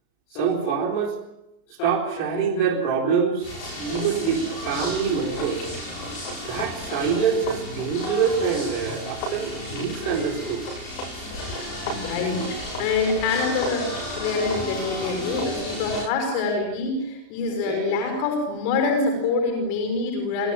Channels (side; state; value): right; late; 34 ms